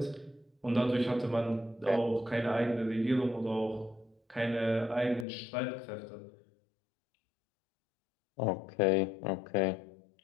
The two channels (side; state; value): right; drops out; at 5.2 s